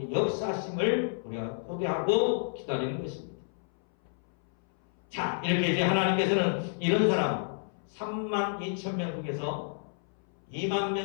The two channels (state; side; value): silent; right; 58 dB below the other